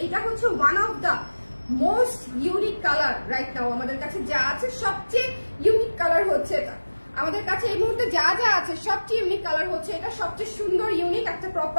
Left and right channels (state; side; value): inverted; both; correlation -1.00